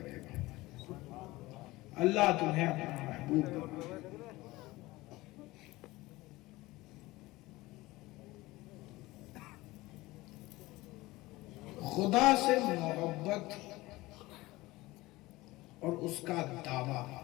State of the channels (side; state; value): right; quieter; 19.6 dB